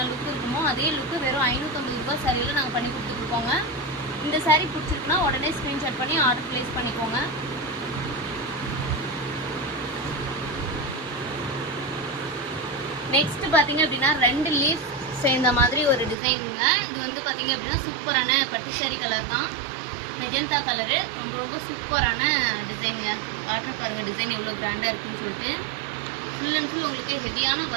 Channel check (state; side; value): drops out; left; at 16.2 s